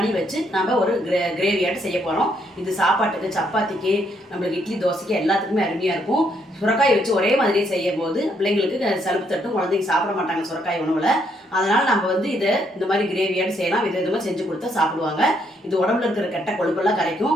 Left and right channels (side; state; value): both; normal; correlation 0.73